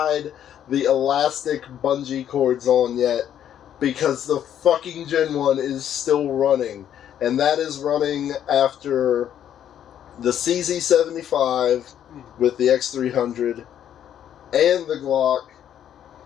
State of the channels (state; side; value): quieter; right; 10.1 dB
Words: the elastic bungee cords on yet, because the fucking Gen 1 is still running. And that is running after the CZ75 with the X300 and the Glock.